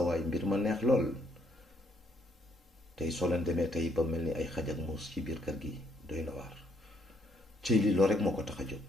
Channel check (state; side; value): normal; both; correlation 0.70